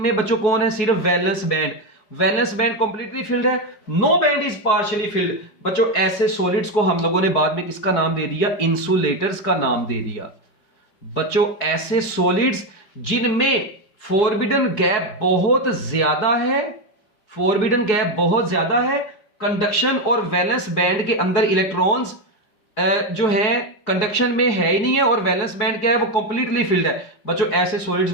बच्चों कौन है, सिर्फ valence band. Valence band completely filled है, no band is partially filled. बच्चों ऐसे सॉलिड्स को हम लोगों ने बाद में किसका नाम दे दिया, इंसुलेटर्स का नाम दे दिया। बच्चों ऐसे सॉलिड्स जिनमें फॉरबिडन गैप बहुत ज्यादा है, फॉरबिडन गैप बहुत ज्यादा है, कंडक्शन और वैलेंस बैंड के अंदर इलेक्ट्रॉन्स जो है कंडक्शन में है ही नहीं है, और वैलेंस बैंड क्या है, वो कंप्लीटली फिल्ड है। बच्चों ऐसे सॉलिड्स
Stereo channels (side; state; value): right; late; 4.7 ms